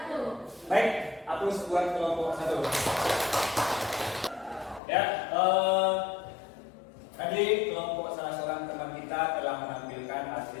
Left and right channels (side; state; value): right; drops out; at 4.8 s